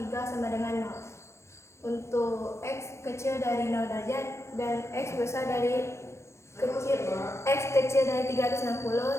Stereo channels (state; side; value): late; right; 0.13 ms